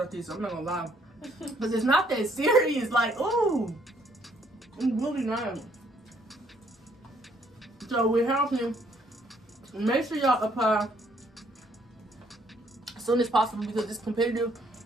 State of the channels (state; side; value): normal; both; correlation 0.67